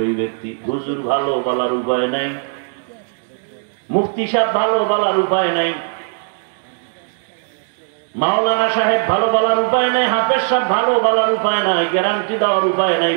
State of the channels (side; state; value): left; silent; digital silence